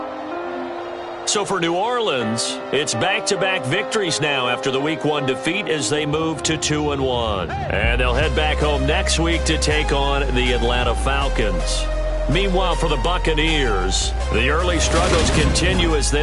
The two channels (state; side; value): identical; both; correlation 1.00